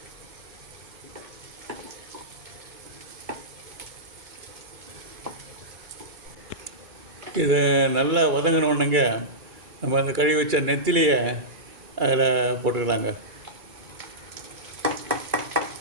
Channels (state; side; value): late; left; 2.4 ms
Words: இதை நல்லா வதங்கினோடனேங்க நம்ம அந்த கழுவி வச்ச நெத்திலியை அதில் போட்டுக்கலாங்க.